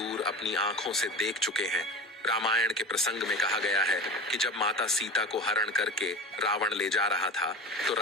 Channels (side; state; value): both; normal; correlation 0.31